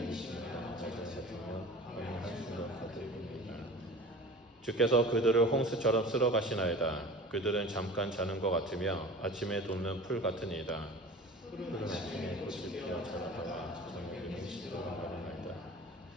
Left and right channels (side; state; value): both; normal; correlation 0.39